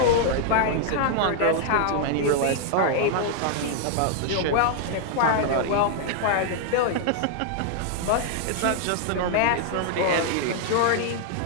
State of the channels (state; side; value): different; both; correlation 0.00